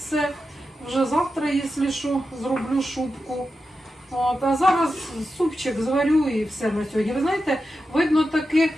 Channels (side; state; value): both; normal; correlation 0.90